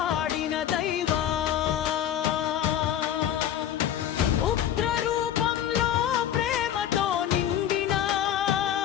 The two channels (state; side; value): quieter; right; 10.6 dB